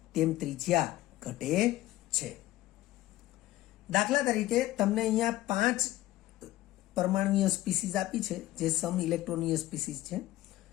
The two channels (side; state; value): right; quieter; 16.1 dB